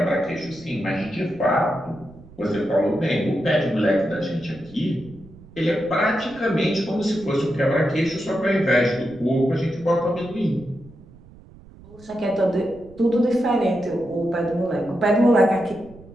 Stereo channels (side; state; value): right; noise; rumble, 22 dB below the sound